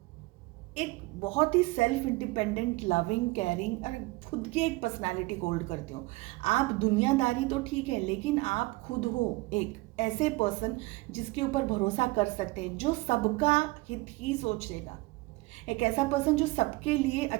एक बहुत ही सेल्फ इंडिपेंडेंट, लविंग, केयरिंग और खुद की एक पर्सनालिटी होल्ड करते हो। आप दुनियादारी तो ठीक है, लेकिन आप खुद हो एक ऐसे पर्सन जिसके ऊपर भरोसा कर सकते हैं, जो सबका हित ही सोचेगा। एक ऐसा पर्सन जो सबके लिए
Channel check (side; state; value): left; quieter; 22.8 dB